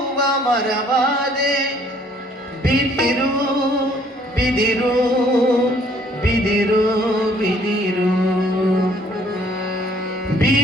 ಮರವಾದೆ ಬಿದಿರು ಬಿದಿರು ಬಿದಿರು ಬಿದಿರು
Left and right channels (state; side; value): normal; both; correlation 0.61